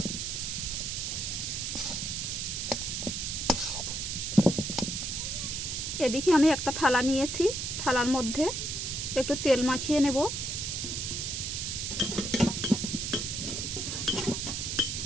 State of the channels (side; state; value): right; noise; hiss, 3 dB below the sound